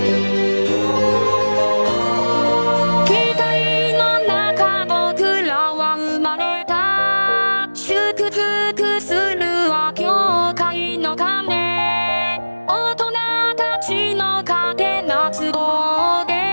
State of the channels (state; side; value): inverted; both; correlation -1.00